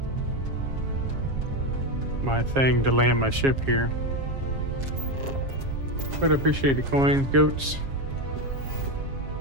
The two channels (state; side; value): late; left; 7.3 ms